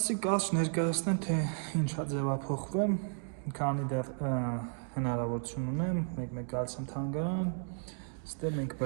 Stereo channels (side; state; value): left; silent; 55 dB below the other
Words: կարճ ներկայացնեմ, թե ինչա ձևափոխվեմ, քանի դեռ հնարավորություն ունեմ, մեկ գալիս եմ թանգարան, ստեղ մենք